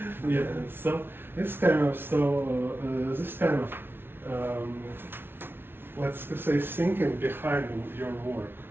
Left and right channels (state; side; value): late; left; 0.11 ms